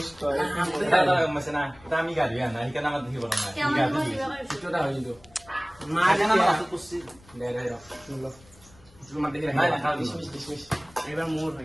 তো দাদা মাসে না দামি গাড়ি না এখানে আমার দেখি বড় না গাড়ি ছোটটা হই তো মা জানা না তো কুছি দে দে লো তুমি মা দেখি না খাও ডিসমিস এবার মোর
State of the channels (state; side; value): noise; left; rumble, 26 dB below the sound